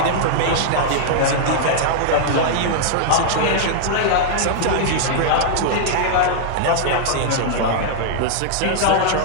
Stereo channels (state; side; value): different; both; correlation -0.01